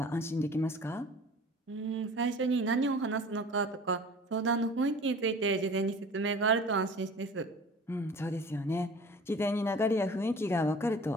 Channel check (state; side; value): normal; both; correlation 0.43